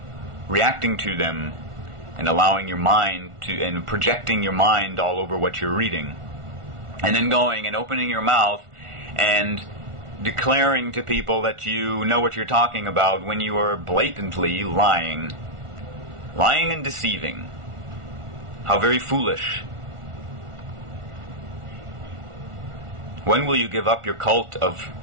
reacting to them and allowing your mind to, and projecting your mind all over what you're reading, and then going and opening your mouth and declaring to people that you know what you're talking about when you are blatantly lying and deceiving? How very foolish. When will you give up your cult of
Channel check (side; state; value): left; late; 1.4 ms